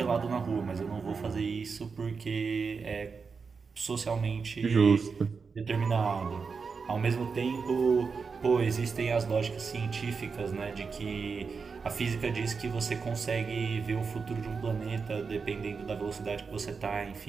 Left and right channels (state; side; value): quieter; left; 5.2 dB